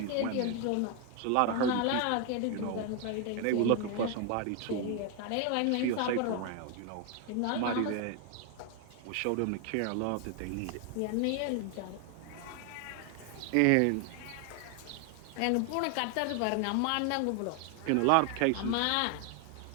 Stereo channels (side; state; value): both; different; correlation 0.01